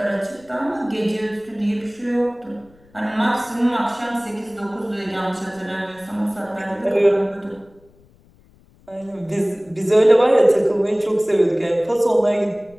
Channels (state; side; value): noise; left; rumble, 29 dB below the sound